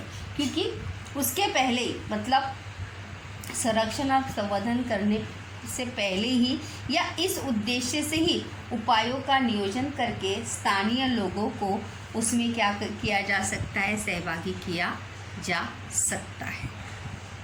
क्योंकि उसके पहले मतलब संरक्षण और संवर्धन करने से पहले ही या इस उद्देश्य से ही उपायों का नियोजन करके स्थानीय लोगों को उसमें क्या किया जा सकता है, सहभागी किया जा सकता है।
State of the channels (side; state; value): both; identical; correlation 1.00